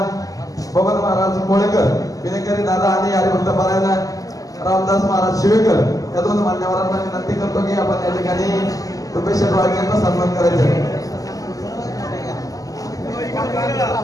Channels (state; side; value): late; right; 0.17 ms